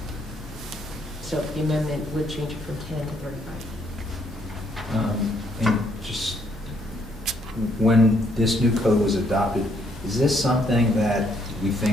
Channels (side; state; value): both; normal; correlation 0.70